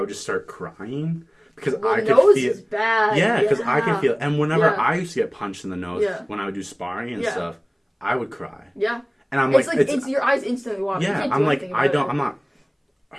just start crying because I could nose feel. Is bad. Yeah, because I could feel. And whenever I used to get punched in the nose when I would do sparring and stuff, I would cry. Yeah. And I'm it's your eyes instantly water. Yeah, I'm like, I'm not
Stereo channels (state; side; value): identical; both; correlation 1.00